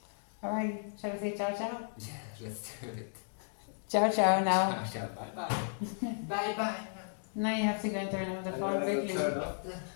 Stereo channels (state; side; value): silent; right; digital silence